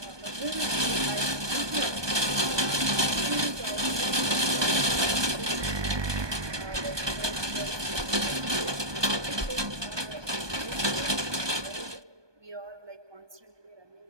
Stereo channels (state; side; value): late; left; 1.2 ms